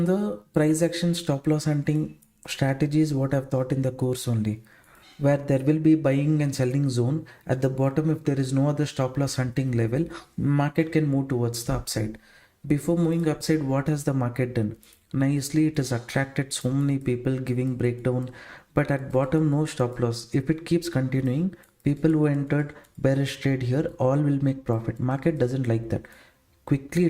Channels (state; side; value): identical; both; correlation 1.00